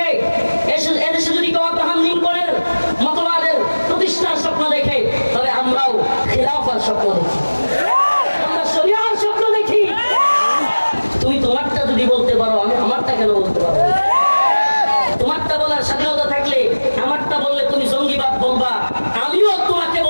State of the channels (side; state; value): both; inverted; correlation -1.00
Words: এদেশে যদি কেউ আব্রাহাম লিঙ্কনের মতবাদের প্রতিষ্ঠার স্বপ্ন দেখে, তবে আমরাও খিলাফার স্বপ্ন দেখি, আমরা শরিয়ার স্বপ্ন দেখি। তুমি তোমারটা যদি বলতে পারো, আমি আমারটা কেন বলতে পারবো? তোমারটা বলার স্বাধীনতা থাকলে আমারটা বললে তুমি জঙ্গিবাদ বলবা, আমিও তোমাকে